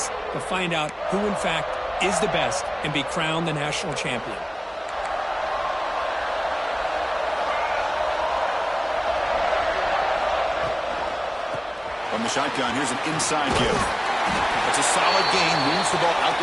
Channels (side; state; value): both; identical; correlation 1.00